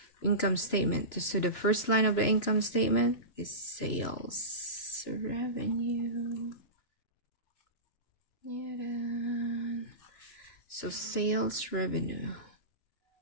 income statement. So the first line of the income statement is sales revenue. So sales revenue,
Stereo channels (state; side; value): late; right; 3.0 ms